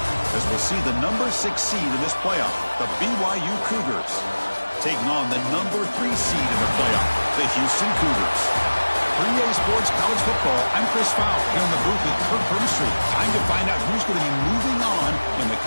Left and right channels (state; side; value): inverted; both; correlation -1.00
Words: As we'll see the number 6 seed in this playoff, the BYU Cougars, taking on the number 3 seed in the playoff, the Houston Cougars. For EA Sports College Football, I'm Chris Fowler here in the booth with Kirk Herbstreit. Time to find out who's going to be moving on in the